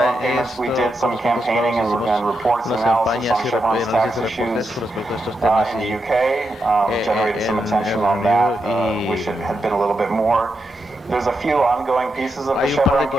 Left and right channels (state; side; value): normal; both; correlation 0.85